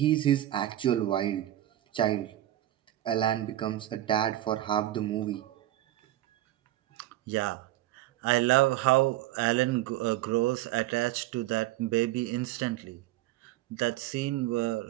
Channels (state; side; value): quieter; left; 14.4 dB